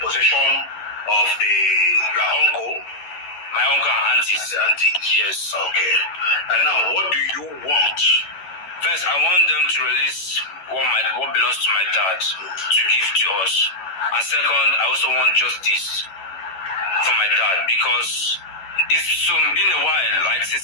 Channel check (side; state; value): right; late; 11 ms